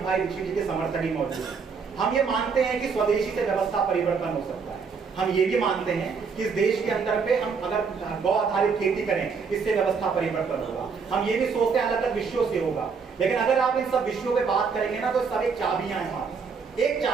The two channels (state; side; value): quieter; left; 5.5 dB